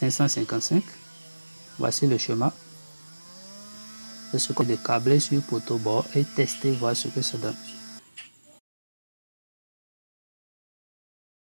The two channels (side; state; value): both; inverted; correlation -1.00